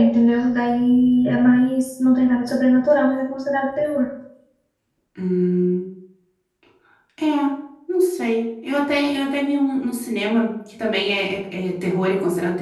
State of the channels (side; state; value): both; identical; correlation 1.00